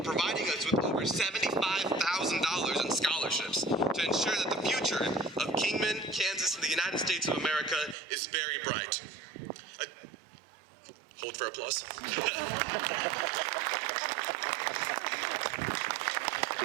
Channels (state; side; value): drops out; left; at 8.0 s